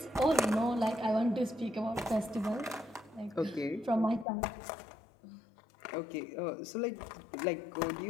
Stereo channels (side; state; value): right; drops out; at 4.2 s